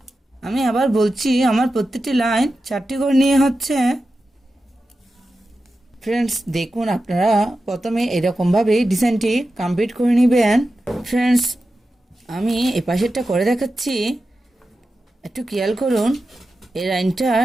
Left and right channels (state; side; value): normal; both; correlation 0.92